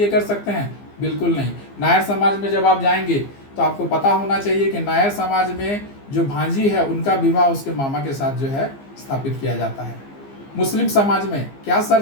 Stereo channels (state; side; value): late; right; 15 ms